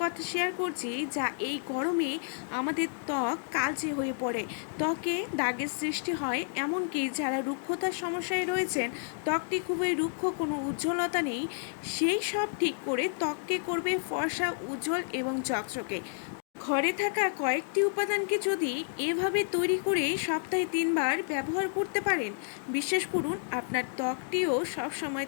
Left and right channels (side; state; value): right; silent; digital silence